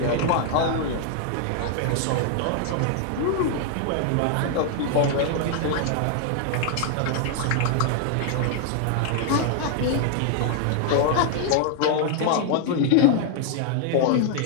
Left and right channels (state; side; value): different; both; correlation 0.00